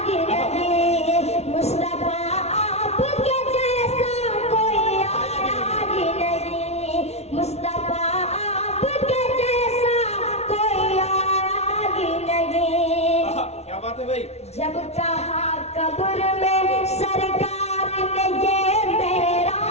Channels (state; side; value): late; right; 0.31 ms